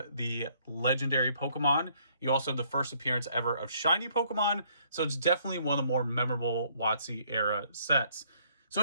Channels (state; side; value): inverted; both; correlation -0.65